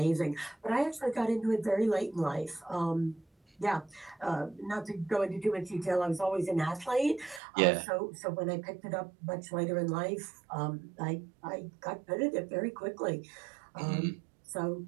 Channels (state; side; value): drops out; left; at 7.4 s